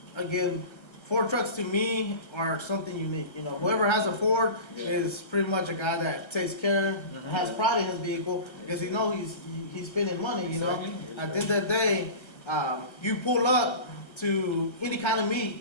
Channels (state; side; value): late; right; 1.3 ms